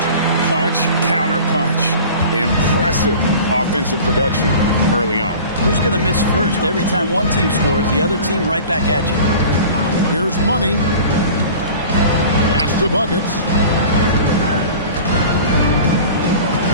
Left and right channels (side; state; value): both; inverted; correlation -0.40